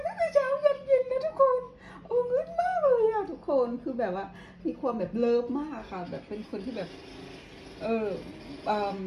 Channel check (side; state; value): both; identical; correlation 1.00